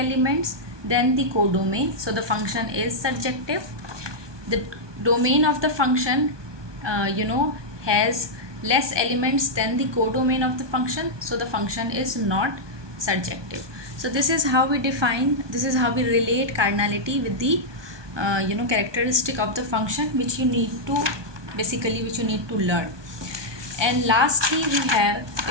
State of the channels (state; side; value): late; left; 1.2 ms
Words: than the codomain, so the function is surjective. The domain of the function has less elements than the codomain of the function, so the function is not surjective. So this is how we relate cardinality with the characteristic of the function, which you need to learn. And lastly, we have,